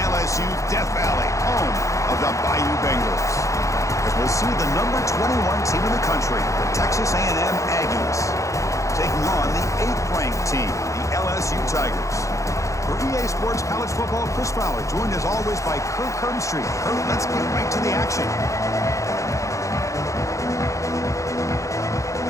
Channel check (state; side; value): late; right; 0.15 ms